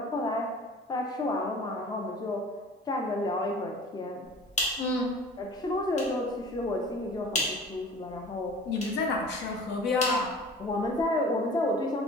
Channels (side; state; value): both; normal; correlation 0.43